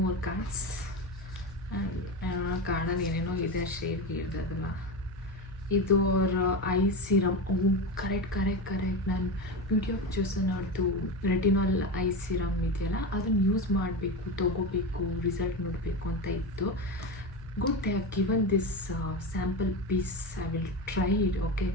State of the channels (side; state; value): both; normal; correlation 0.20